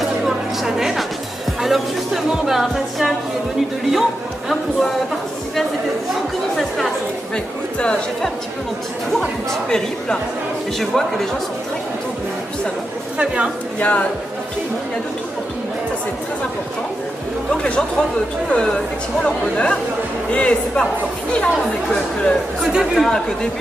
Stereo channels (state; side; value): normal; both; correlation 0.87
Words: du Coworking Channel. Alors justement, Fatia qui est venue de Lyon pour participer à cette édition, comment ça se passe? Écoute, j'ai fait un petit peu mon petit tour, un petit périple, et je vois que les gens sont très contents du salon. Très bien. Il y a tout le monde, il y a de tout pour tout le monde, ça c'est très important. Donc les gens trouvent tout effectivement leur bonheur, et c'est pas encore fini, on n'est que